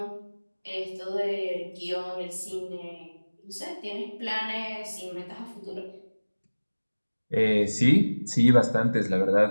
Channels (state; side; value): inverted; both; correlation -1.00